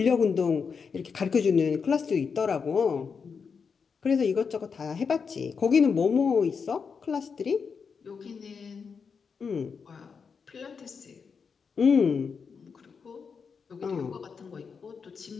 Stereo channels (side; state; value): right; quieter; 5.8 dB